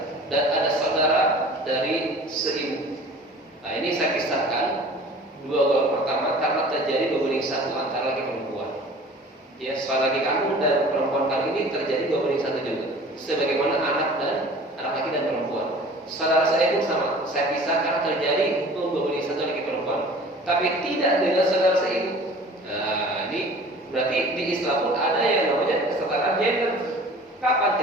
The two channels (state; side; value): normal; both; correlation 0.45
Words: dan ada saudara dari seibu. Nah, ini saya kisahkan 2 golongan pertama karena terjadi berbanding 1 antara laki perempuan. Ya, saudara laki kandung dan perempuan kandung ini terjadi 2 banding 1 juga. Sebagaimana anak laki dan perempuan. Saudara saya pun sama. Saya pisah karena terjadi hukum 2 banding 1 laki perempuan, tapi tidak dengan saudara seibu. Nah, ini berarti di Islam pun ada yang namanya kesetaraan gender. Kapan?